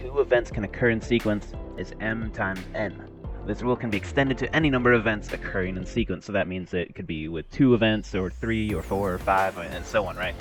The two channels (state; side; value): identical; both; correlation 1.00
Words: events can occur in sequence is m times n. This rule can be extended to any number of events occurring in sequence, so that means it could be with 2 events, or 3, or 4, or 5, and so on, right?